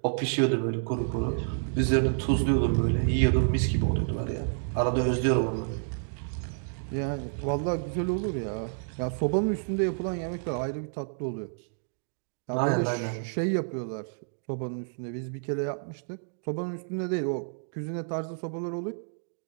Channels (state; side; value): silent; left; digital silence